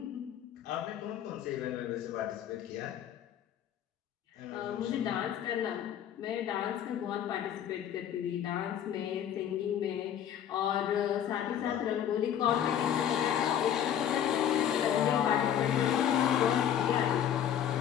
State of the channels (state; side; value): quieter; right; 9.8 dB